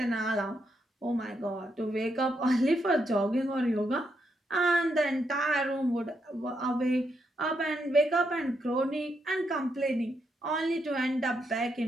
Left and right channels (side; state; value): both; normal; correlation 0.80